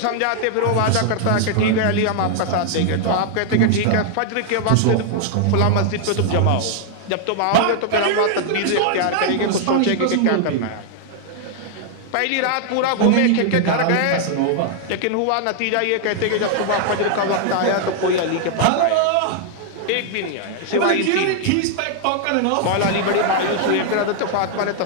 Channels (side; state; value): both; different; correlation 0.00